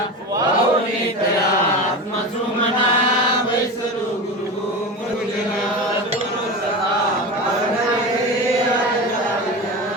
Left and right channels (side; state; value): both; normal; correlation 0.26